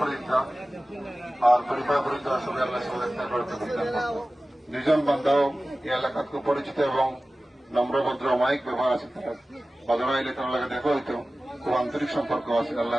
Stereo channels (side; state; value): both; normal; correlation 0.96